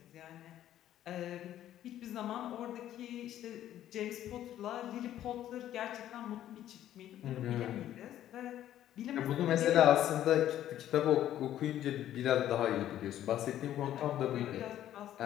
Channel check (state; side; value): quieter; right; 12.0 dB